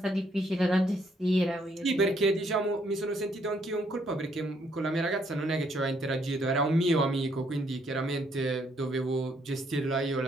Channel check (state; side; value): normal; both; correlation 0.70